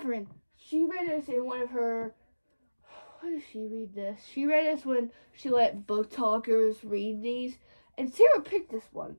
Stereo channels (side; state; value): both; inverted; correlation -1.00